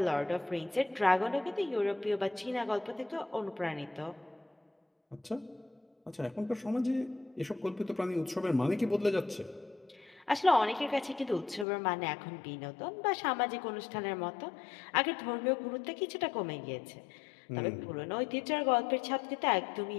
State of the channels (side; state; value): right; drops out; at 11.7 s